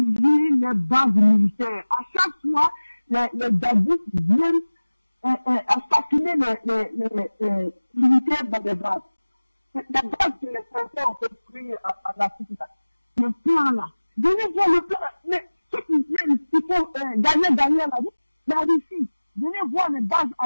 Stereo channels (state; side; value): inverted; both; correlation -1.00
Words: les bases militaires. À chaque fois, les djihadistes viennent assassiner les militaires dans des bases. Les bases que les Français ont construit en Afrique, le plan là. Venez voir le plan. Mais ceux qui viennent, il faut gagner la Russie. Venez voir les bases